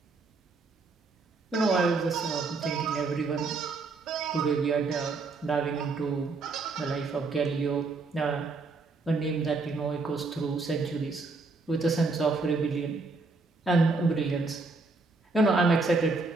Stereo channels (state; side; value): quieter; left; 3.8 dB